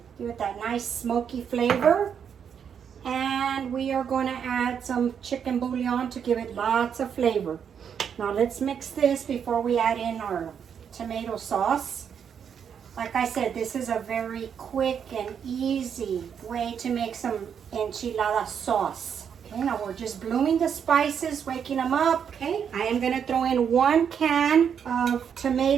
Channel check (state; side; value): quieter; left; 7.7 dB